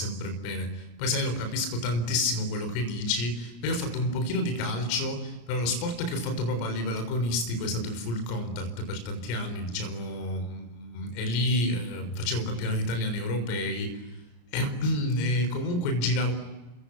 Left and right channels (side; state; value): right; late; 34 ms